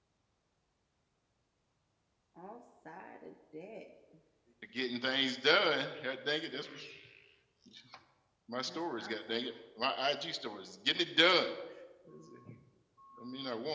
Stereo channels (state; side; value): identical; both; correlation 1.00